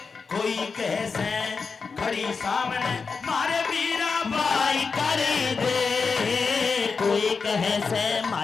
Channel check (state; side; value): quieter; right; 5.0 dB